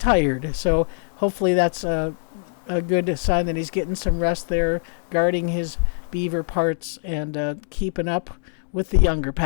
So hopefully that's a good sign that he's getting some rest there, guarding his beaver parts, and keeping up with the younger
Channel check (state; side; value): silent; right; digital silence